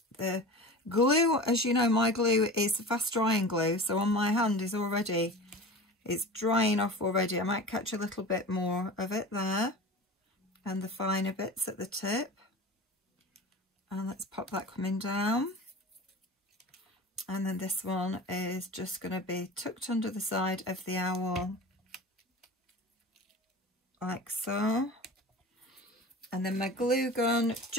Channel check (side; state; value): both; normal; correlation 0.34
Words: the glue, as you know, my glue is fast drying glue. So on my hand is already, it's drying off already. I might catch a little bit more of it there. And the finer bits at the tip. And let's pop that coming down. And then this one is just going to be tucked under the side of the owl, like so. And then my glue gun